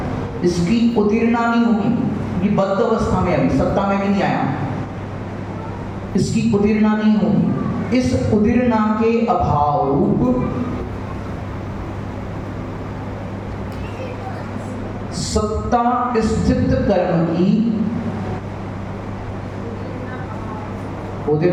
इसकी उदीर्णा नहीं होगी, ये बद्ध अवस्था में, अभी सत्ता में भी नहीं आया, इसकी उदीर्णा नहीं होगी। इस उदीर्णा के अभाव रूप सत्ता स्थित कर्म की,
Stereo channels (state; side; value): identical; both; correlation 1.00